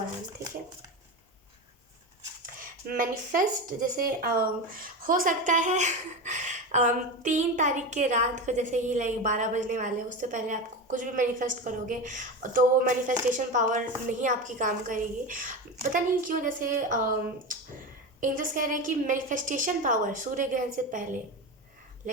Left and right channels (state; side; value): normal; both; correlation 0.22